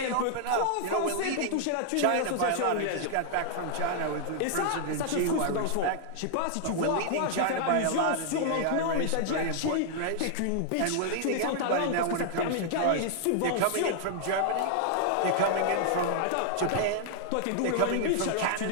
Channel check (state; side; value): different; both; correlation -0.01